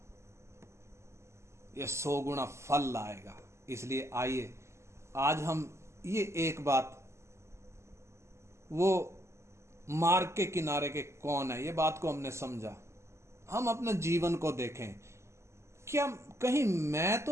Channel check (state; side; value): late; left; 0.13 ms